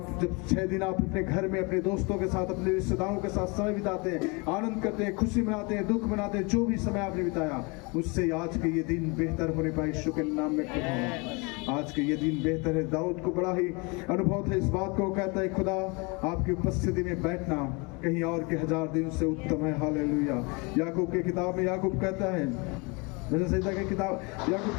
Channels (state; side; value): quieter; right; 29.2 dB